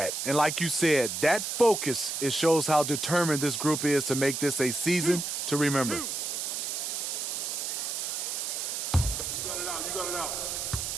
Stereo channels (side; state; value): right; noise; hiss, 3 dB below the sound